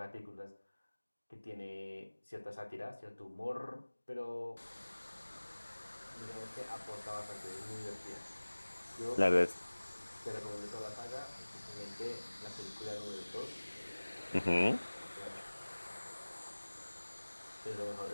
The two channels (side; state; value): both; inverted; correlation -1.00